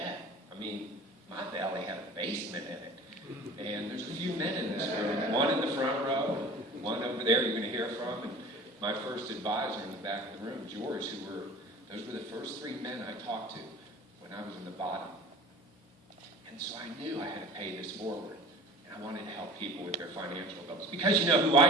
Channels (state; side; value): normal; both; correlation 0.40